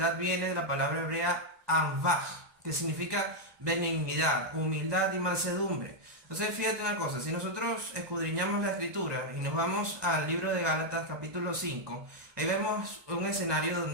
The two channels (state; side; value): late; left; 1.2 ms